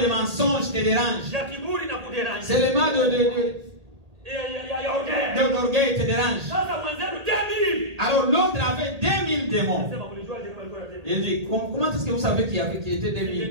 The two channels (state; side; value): late; left; 1.8 ms